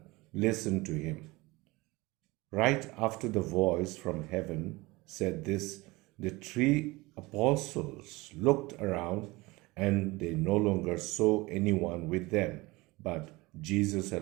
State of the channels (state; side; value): quieter; left; 22.3 dB